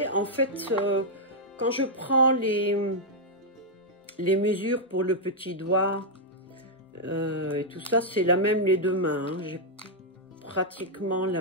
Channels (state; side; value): normal; both; correlation -0.04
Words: En fait, quand je prends les mesures pour le petit doigt et tout ça, c'est la même les deux mains. Hein. J'ai pratiquement